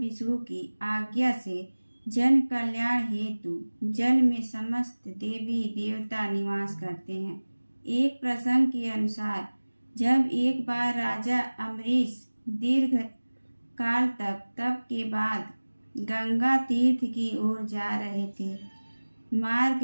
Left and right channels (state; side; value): inverted; both; correlation -1.00